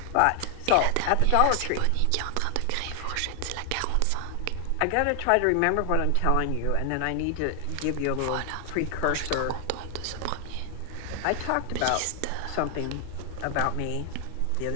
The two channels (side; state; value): both; different; correlation 0.00